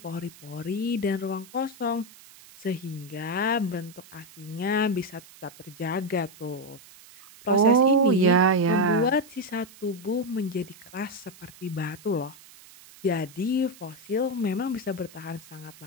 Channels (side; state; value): right; noise; hiss, 21 dB below the sound